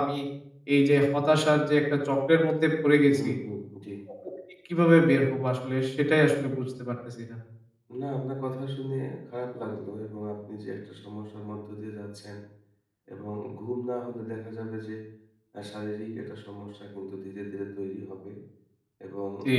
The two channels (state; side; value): identical; both; correlation 1.00